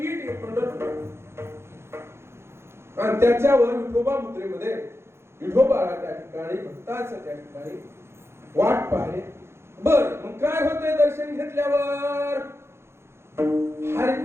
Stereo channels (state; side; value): late; left; 0.12 ms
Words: हे पंढरपूर. आणि त्याच्यावर विठोबा मुद्रेमध्ये विठोबाला त्या ठिकाणी भक्ताचं त्या ठिकाणी वाट पाहिले. बर मग काय होतंय दर्शन घेतल्यावर? हरी